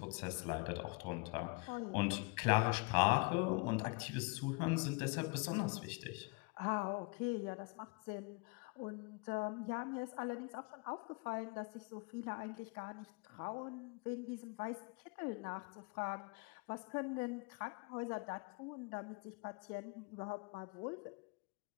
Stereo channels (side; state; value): right; quieter; 29.8 dB